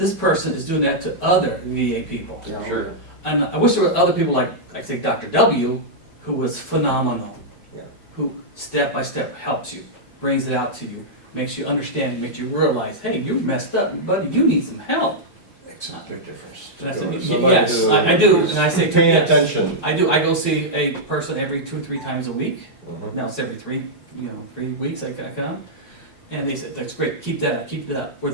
person is doing that to other VA people. Yeah, Sure. And I wish there were other people like say Dr. W, who was phenomenal. Yeah. Who step by step helps you, brings it out to you, makes you understand, makes you realize, hey, you're messed up, buddy, you need some help. Makes a big difference. And I To said, go to "Y- somebody yes, who I do," is and I say, paying "Yes." attention. I do, I go see a person every 2-3 times a week. Mhm. Now it's every 3 weeks I come. And they said, "That's great, keep that up, keep it up." Where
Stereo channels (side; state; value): right; late; 5.2 ms